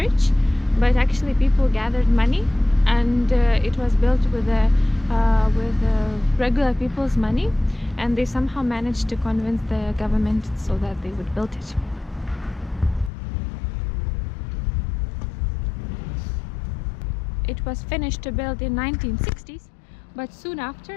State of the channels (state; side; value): drops out; right; at 13.1 s